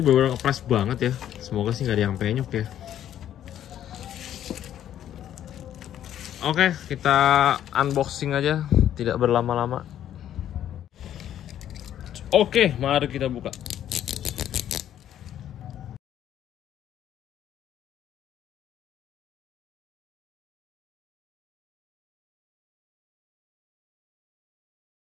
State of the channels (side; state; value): right; quieter; 10.9 dB